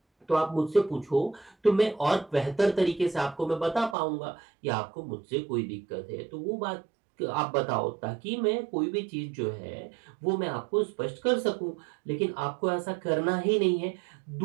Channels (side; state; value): left; drops out; at 4.0 s